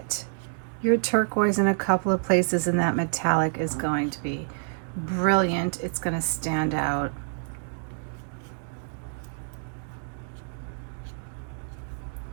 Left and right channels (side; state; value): left; silent; digital silence